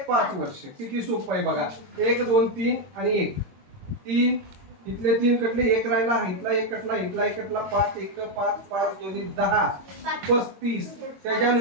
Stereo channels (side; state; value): left; late; 22 ms